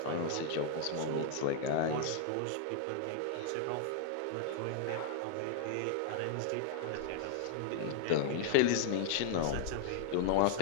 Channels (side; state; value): both; different; correlation 0.00